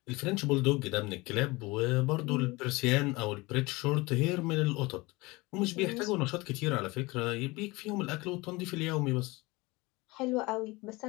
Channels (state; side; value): quieter; right; 23.1 dB